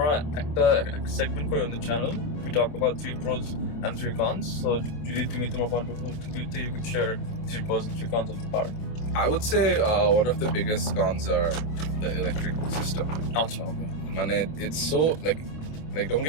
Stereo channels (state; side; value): late; right; 26 ms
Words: একটা segment করি on the channel we talk about 3 pros and 3 cons so যদি তুমি তোমার point of view you could share 3 pros and 3 cons of the car I would say one of the biggest cons are the electric system. আচ্ছা okay Mane, it's so like don't